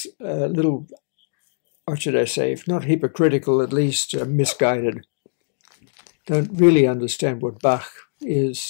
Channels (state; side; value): silent; right; digital silence